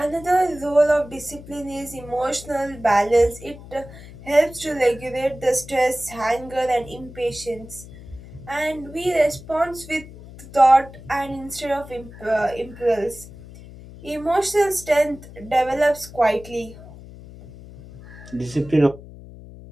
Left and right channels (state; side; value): noise; left; hum, 17 dB below the sound